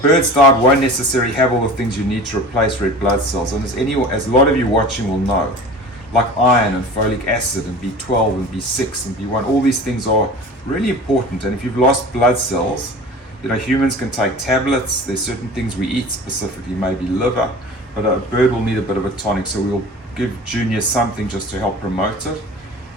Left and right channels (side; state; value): both; normal; correlation 0.38